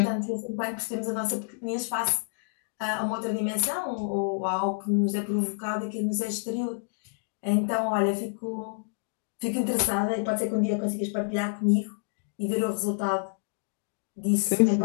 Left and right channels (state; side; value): silent; right; digital silence